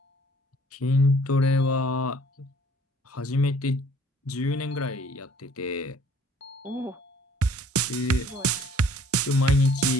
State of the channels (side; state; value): both; normal; correlation 0.56